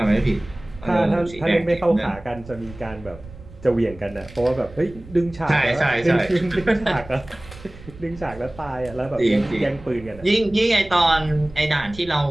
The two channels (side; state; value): right; noise; rumble, 18 dB below the sound